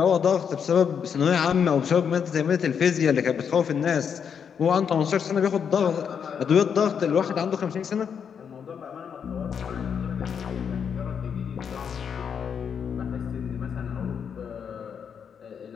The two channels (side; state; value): right; quieter; 7.3 dB